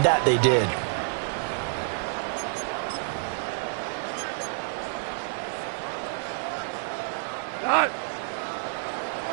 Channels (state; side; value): silent; left; digital silence